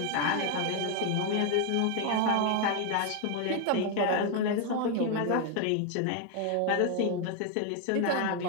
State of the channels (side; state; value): both; different; correlation 0.01